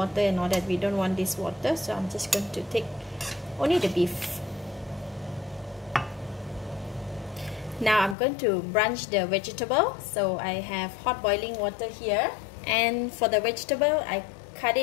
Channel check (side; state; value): right; drops out; at 8.2 s